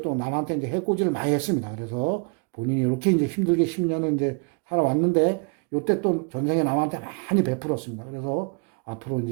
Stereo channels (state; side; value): quieter; left; 35.8 dB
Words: 또 남한테 이제 해코지를 많이 했습니다. 그래서 본인이 이렇게 이제 힘들게 10년을 이제 살아왔는데, 요때 또 전생에 남한테 많이 베풀었습니다. 그래서 앞으로